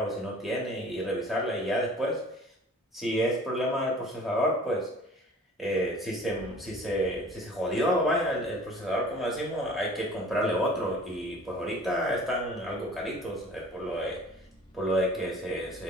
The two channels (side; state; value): both; normal; correlation 0.47